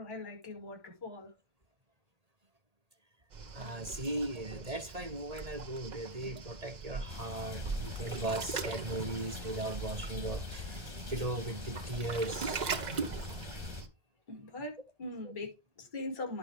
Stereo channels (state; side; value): late; left; 2.0 ms